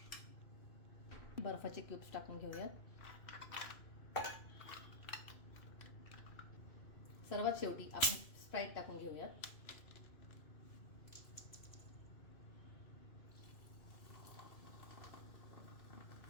बर्फाचे क्यूब्स टाकून घेऊयात. सर्वात शेवटी आपण स्प्राईट टाकून घेऊयात.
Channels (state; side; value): late; right; 2.6 ms